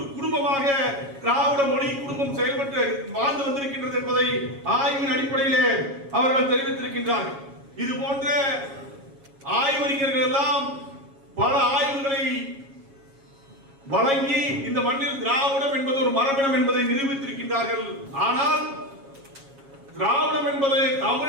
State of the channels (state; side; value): late; left; 7.3 ms